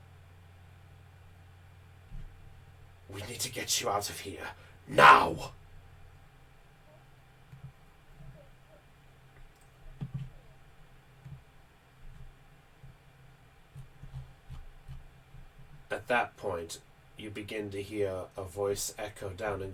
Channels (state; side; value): identical; both; correlation 1.00